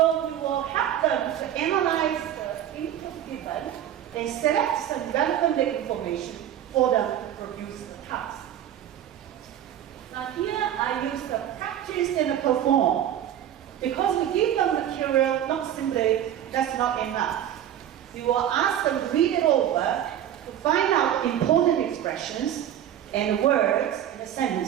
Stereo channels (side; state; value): left; quieter; 10.8 dB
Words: we will help them to analyze the input given and select some relevant information for them to produce the task. Now here I use the practice and the perform. Because we give them material, not simply, that's not enough. We will ask them to read it over to find out important expressions and words and